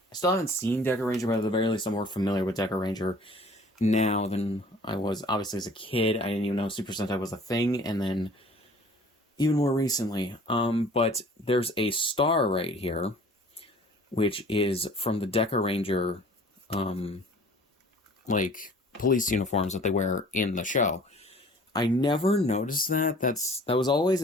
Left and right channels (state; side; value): normal; both; correlation 0.49